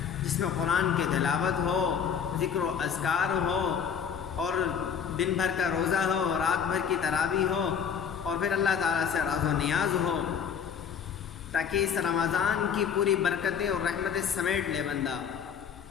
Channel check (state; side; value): quieter; right; 7.4 dB